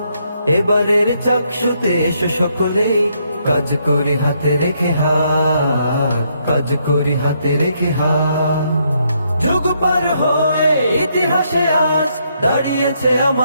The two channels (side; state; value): both; inverted; correlation -0.74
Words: এবারের চাকসুতে এসো সকলেই, কাজ করি হাতে রেখে হাত, কাজ করি হাতে রেখে হাত। যুগ পার হয়ে ইতিহাসে আজ দাঁড়িয়েছে